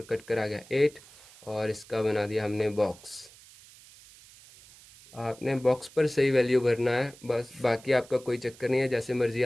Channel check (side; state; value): right; noise; hiss, 22 dB below the sound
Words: कट कर आ गया 8, और इसका बना दिया हमने बॉक्स। आपने बॉक्स पर सही वैल्यू भरना है बस, बाकी आपका कोई चक्कर नहीं है, जैसे मर्ज़ी